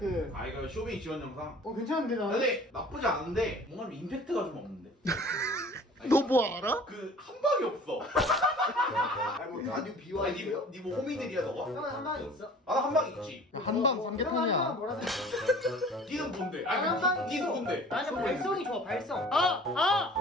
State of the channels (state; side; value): normal; both; correlation 0.46